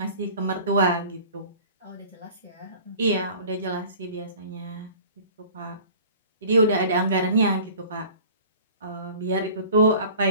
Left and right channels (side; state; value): both; inverted; correlation -0.46